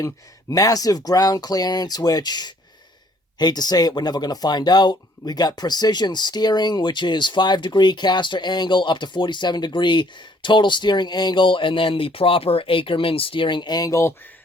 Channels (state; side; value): normal; both; correlation 0.62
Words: Massive ground clearance, which Hate to say it, we're never going to find out. We got precision steering, which is 5-degree caster angle up to 47-degree total steering angle, and then the proper Ackerman steering angle.